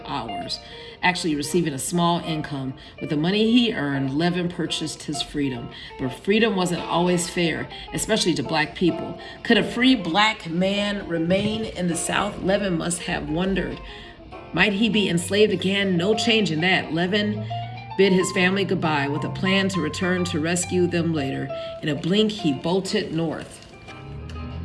hours, actually receiving a small income. With the money he earned, Levin purchased his freedom. But freedom wasn't always fair, especially to black people. Could a free black man remain in the South? Levin must have wondered. Might he be enslaved again? No change in that. Levin bid his family goodbye with a plan to return to rescue them later. In a blink, he bolted north.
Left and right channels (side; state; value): both; identical; correlation 1.00